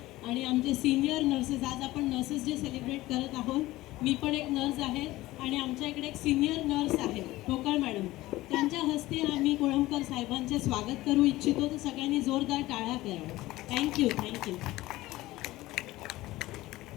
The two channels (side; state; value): right; quieter; 17.7 dB